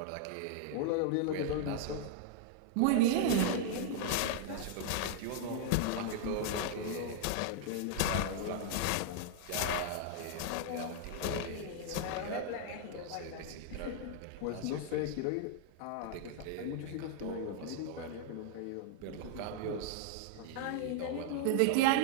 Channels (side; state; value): both; different; correlation 0.00